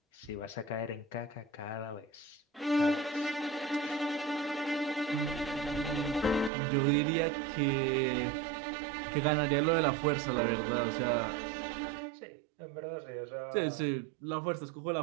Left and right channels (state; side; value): drops out; left; at 6.5 s